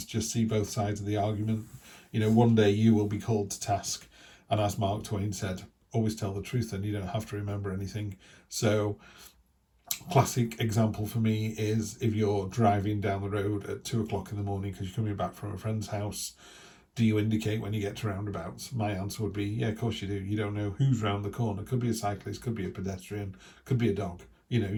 just see both sides of the argument. You know, one day you will be called to task. And as Mark Twain said, always tell the truth and you don't have to remember anything. So Classic example for me is if you're driving down the road at 2 o'clock in the morning because you're coming back from a friend's house. Do you indicate when you get to roundabouts? My answer would be, yeah, of course you do. You don't know who's round the corner. Could be a cyclist, could be a pedestrian, could be a dog.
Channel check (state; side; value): identical; both; correlation 1.00